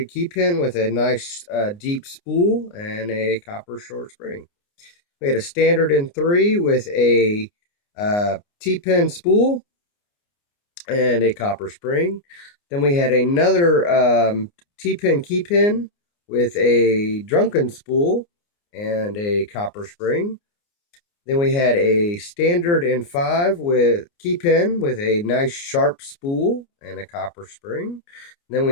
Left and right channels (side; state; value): right; late; 29 ms